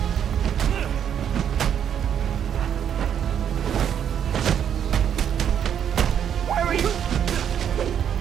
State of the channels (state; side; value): quieter; left; 8.9 dB